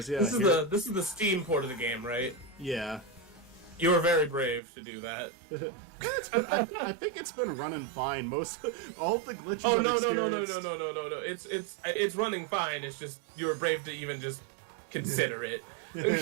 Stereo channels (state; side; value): drops out; left; at 4.6 s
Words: yeah. This is the Steam port of the game, right? Yeah. You were very brave to do that. I think it's been running fine. All the glitches Oh I've no. experienced. It's running fine. It's just you were brave to even just consider it.